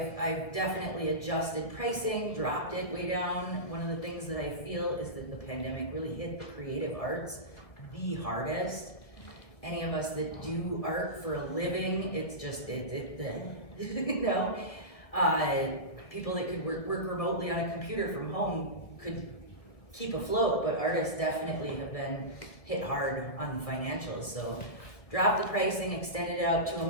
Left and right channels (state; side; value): late; right; 1.7 ms